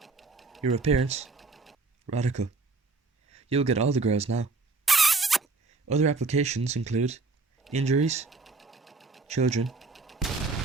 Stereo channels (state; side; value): quieter; left; 3.8 dB